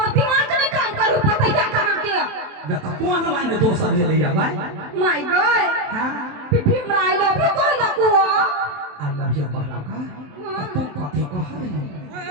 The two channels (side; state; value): left; late; 27 ms